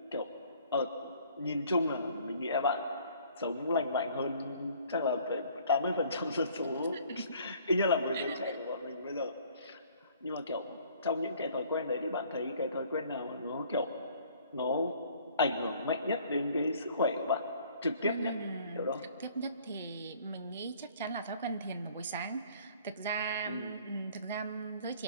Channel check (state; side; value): inverted; both; correlation -0.57